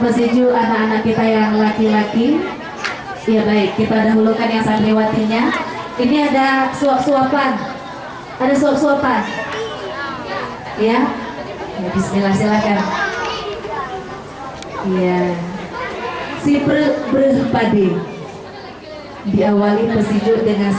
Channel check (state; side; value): identical; both; correlation 1.00